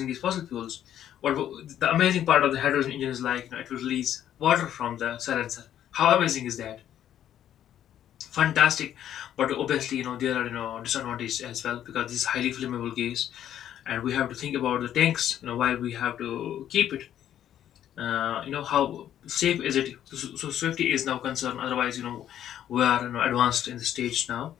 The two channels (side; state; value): right; quieter; 10.8 dB